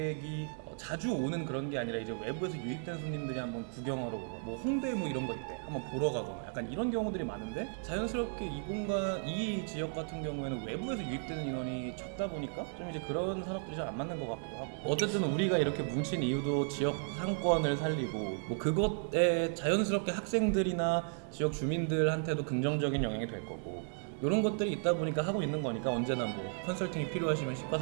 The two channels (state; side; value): silent; left; 55 dB below the other